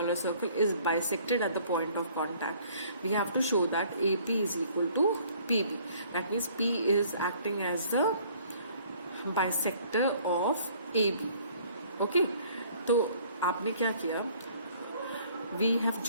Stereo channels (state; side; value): inverted; both; correlation -0.57